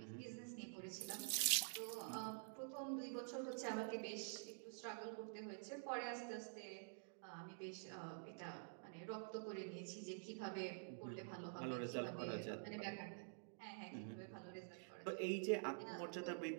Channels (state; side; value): silent; left; digital silence